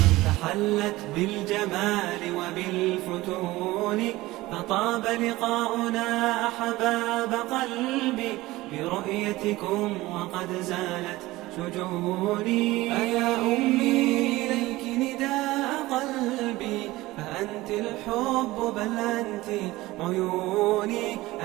تحلت بالجمال وبالفتون، فطاب لقاؤنا أحباب قلبي برؤيتكم وقد زالت شجوني. أيا أمي إليك نداء قلبي، فأنت الحب بل أنت عيوني.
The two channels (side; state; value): left; quieter; 18.7 dB